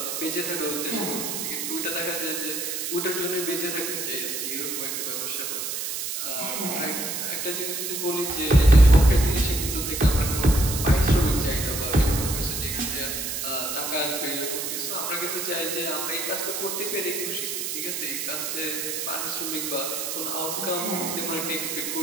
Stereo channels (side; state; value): right; noise; hiss, 3 dB below the sound